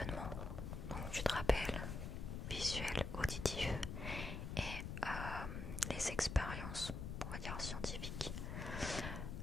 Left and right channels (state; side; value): noise; left; rumble, 5 dB below the sound